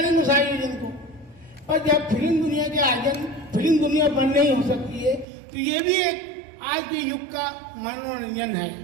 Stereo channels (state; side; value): drops out; left; at 5.2 s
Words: उस आयोजन को, पर जब फिल्म दुनिया के आयोजन फिल्म दुनिया बंद नहीं हो सकती है तो ये भी एक आज के युग का मनोरंजन है।